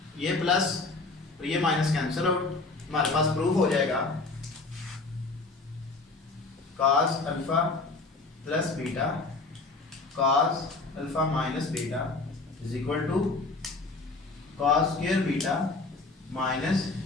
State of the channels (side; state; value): right; quieter; 3.6 dB